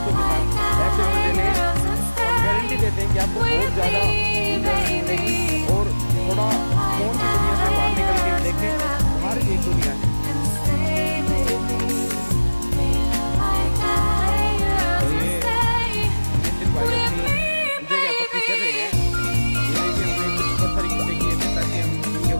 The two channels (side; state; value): both; inverted; correlation -1.00